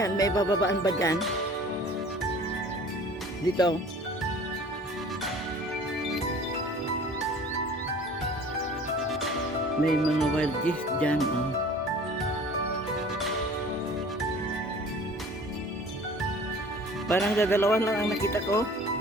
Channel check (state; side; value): normal; both; correlation 0.47